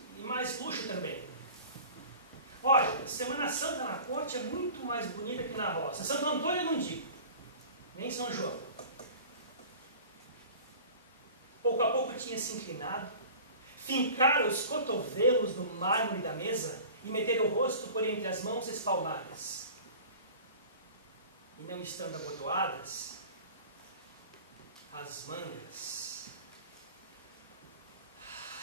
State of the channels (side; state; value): both; inverted; correlation -0.41